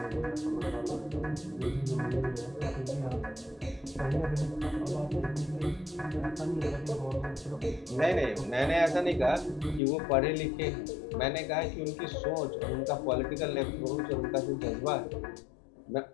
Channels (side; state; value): right; drops out; at 9.8 s